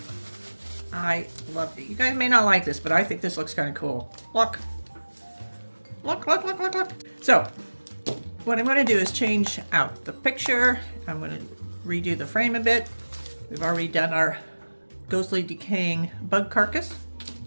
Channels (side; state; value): both; inverted; correlation -1.00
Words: I love it. You guys may not like this, but I think this looks kind of cool. Look. Look, look, look, look, look. So, what I'm going to do is change out the picture. I'm going to redo the frame a bit. We've already done our ghostly decaying bug carcass.